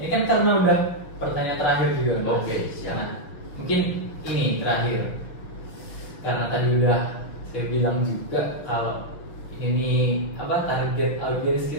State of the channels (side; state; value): right; late; 6.3 ms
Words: kan karena udah pertanyaan terakhir juga. Mas. Oke, siap. Nah, mungkin ini terakhir, karena tadi udah saya bilang juga kalau ini target audiens